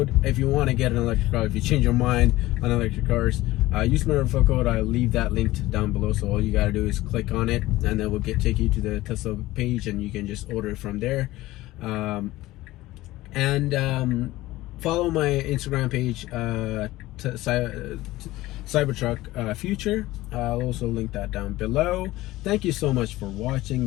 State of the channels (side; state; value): right; quieter; 17.5 dB